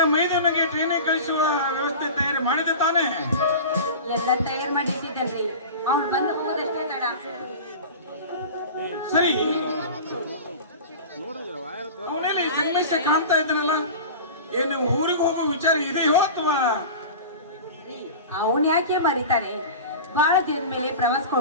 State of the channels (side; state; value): both; inverted; correlation -0.33